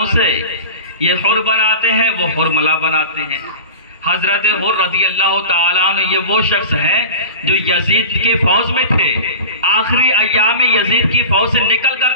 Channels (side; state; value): both; inverted; correlation -0.33